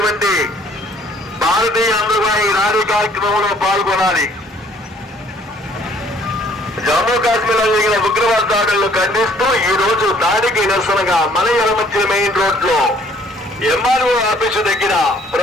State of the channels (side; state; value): both; normal; correlation 0.60